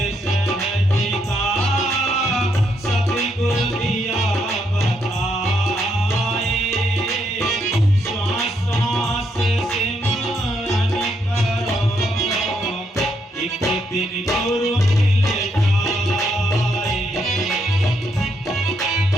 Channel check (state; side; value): normal; both; correlation 0.76